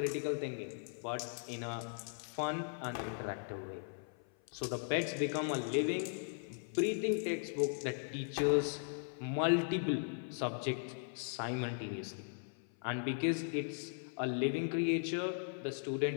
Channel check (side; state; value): right; silent; 52 dB below the other